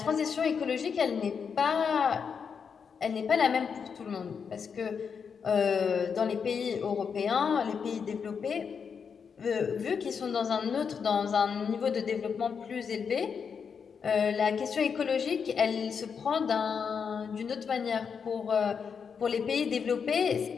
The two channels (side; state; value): right; quieter; 6.4 dB